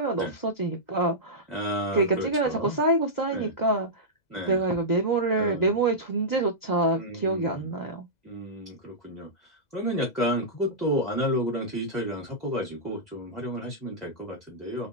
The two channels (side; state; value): right; late; 2.0 ms